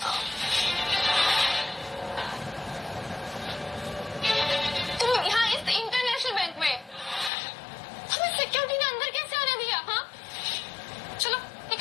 तुम यहाँ इस इंटरनेशनल बैंक में हमें सिक्योरिटी ने अंदर कैसे आने दिया? हाँ, चलो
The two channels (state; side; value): drops out; right; at 7.3 s